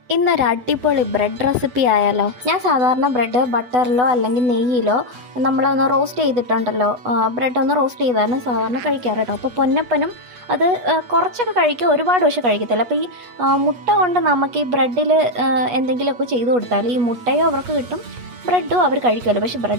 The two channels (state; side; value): late; left; 8.3 ms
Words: ഇന്നൊരു അടിപൊളി bread recipe ആയാലോ. ഞാൻ സാധാരണ ബ്രെഡ് ബട്ടറിലോ അല്ലെങ്കിൽ നെയ്യിലോ നമ്മളൊന്ന് റോസ്റ്റ് ചെയ്തിട്ടുണ്ടല്ലോ, ബ്രെഡ് ഒന്ന് റോസ്റ്റ് ചെയ്താണ് സാധാരണ കഴിക്കാറ് കേട്ടോ. അപ്പോൾ പൊന്നപ്പനും അത് കുറച്ചൊക്കെ കഴിക്കും, ഒരുപാട് പക്ഷെ കഴിക്കത്തില്ല. അപ്പോൾ ഈ മുട്ട കൊണ്ട് നമുക്ക് ഈ ബ്രെഡിൽ എന്തെങ്കിലുമൊക്കെ ചെയ്ത് കൊടുത്താൽ ഈ മുട്ടയോ അവർക്ക് കിട്ടും, ബ്രെഡും അവർ കഴിക്കുമല്ലോ. പക്ഷേ